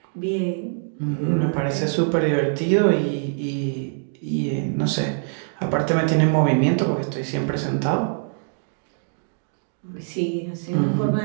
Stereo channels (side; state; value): left; silent; digital silence